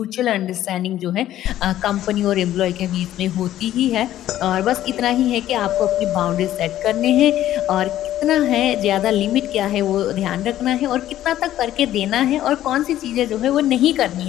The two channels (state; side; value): quieter; right; 12.9 dB